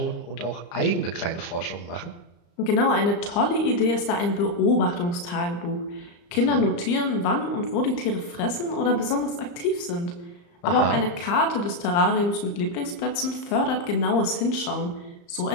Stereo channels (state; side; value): late; right; 34 ms